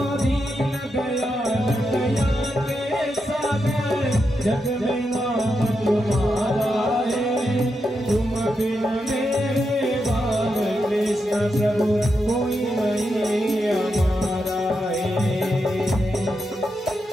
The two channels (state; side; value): normal; both; correlation 0.85